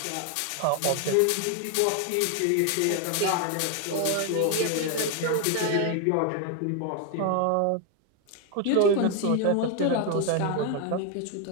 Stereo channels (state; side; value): different; both; correlation 0.01